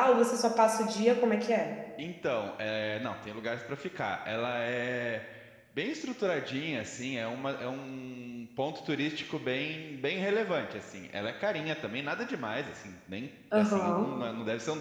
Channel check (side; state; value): both; identical; correlation 1.00